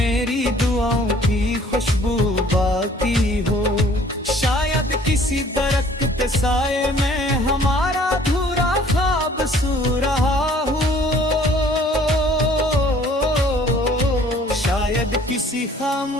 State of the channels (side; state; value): both; normal; correlation 0.55